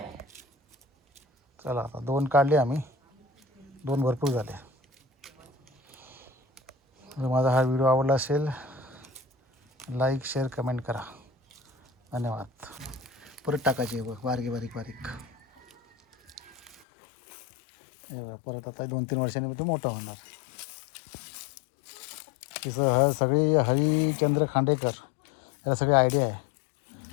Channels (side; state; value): right; drops out; at 16.9 s